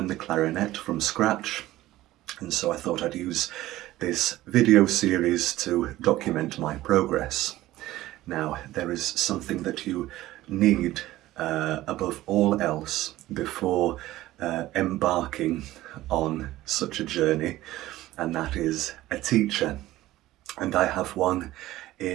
the clarinet from scratch, and so I thought I'd use this video series to document my progress. Now, there is something that you need above all else before embarking on such a journey, and that is a teacher. And I have one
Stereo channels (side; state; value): left; quieter; 16.1 dB